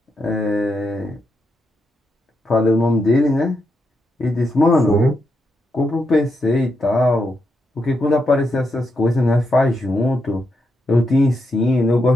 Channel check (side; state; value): both; normal; correlation 0.83